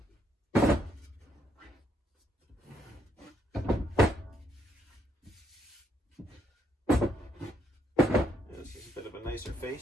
This is a bit of a nicer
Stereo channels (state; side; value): normal; both; correlation 0.73